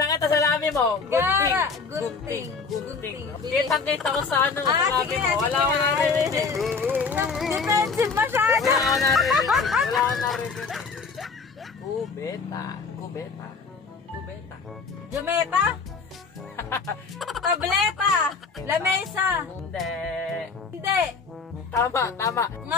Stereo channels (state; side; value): quieter; right; 4.9 dB